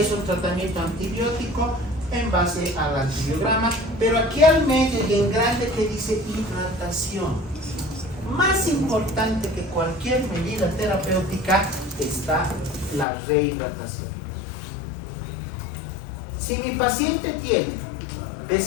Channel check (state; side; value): drops out; right; at 13.1 s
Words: un tratamiento antibiótico en base al antibiograma, pero aquí al medio y en grande que dice hidratación. Más importante que cualquier medida terapéutica está la rehidratación. Si mi paciente tiene